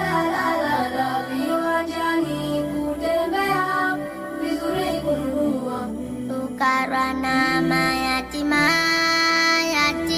la la la la, viwanjani kutembea, vizuri kununua. Fukara na mayatima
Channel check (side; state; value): both; identical; correlation 1.00